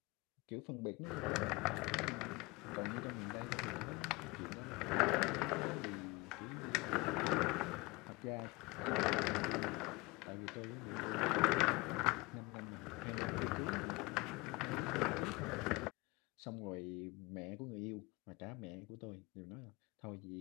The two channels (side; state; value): right; quieter; 24.5 dB